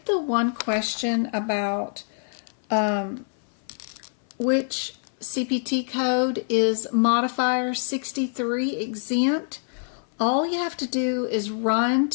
the one question about which CPT code is modifier 63 exempt, all you have to do is run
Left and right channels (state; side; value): silent; right; 59 dB below the other